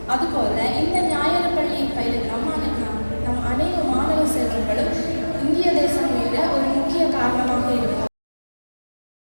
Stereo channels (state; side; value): inverted; both; correlation -1.00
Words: அதுபோல இந்த ஞாயிறு பள்ளியை பயிலும் நம் அனைத்து மாணவ செல்வங்களும் இந்திய தேசம் மீத ஒரு முக்கிய காரணமாக இருக்கும்.